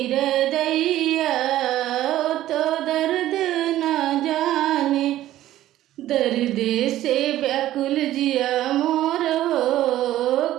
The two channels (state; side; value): quieter; left; 13.9 dB